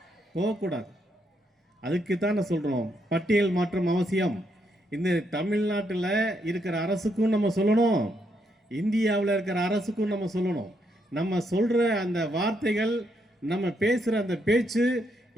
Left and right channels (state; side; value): normal; both; correlation 0.77